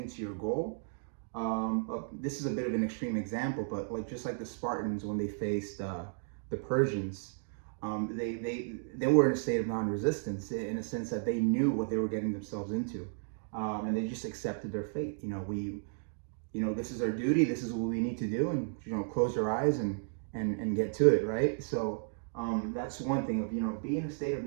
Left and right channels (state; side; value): silent; left; digital silence